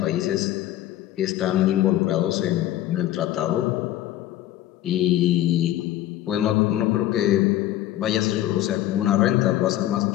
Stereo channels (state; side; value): quieter; right; 13.8 dB